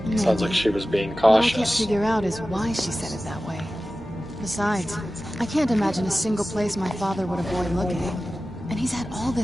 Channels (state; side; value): normal; both; correlation 0.95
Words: Sounds like she was being What I can't cautious. figure out is why she said it that way. Besides, I can't imagine a single place my father would avoid looking. And he's had all